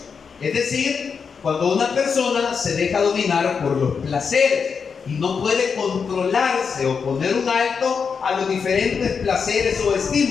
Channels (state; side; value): quieter; right; 6.0 dB